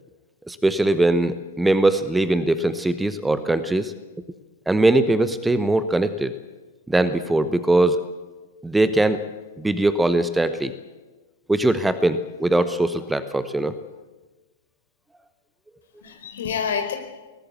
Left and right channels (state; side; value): normal; both; correlation 0.81